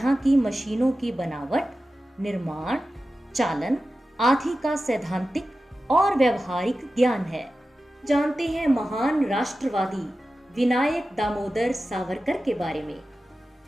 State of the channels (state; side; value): normal; both; correlation 0.94